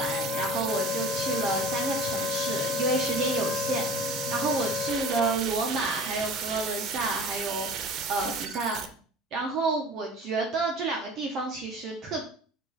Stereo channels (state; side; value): normal; both; correlation 0.41